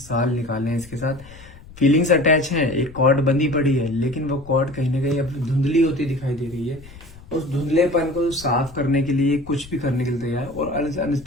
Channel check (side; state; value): left; noise; rumble, 19 dB below the sound